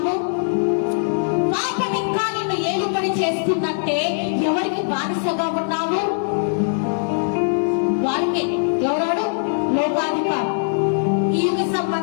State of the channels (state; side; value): silent; right; 59 dB below the other